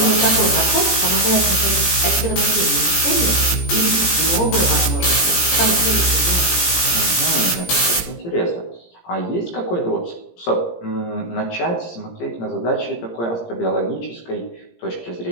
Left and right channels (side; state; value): right; late; 17 ms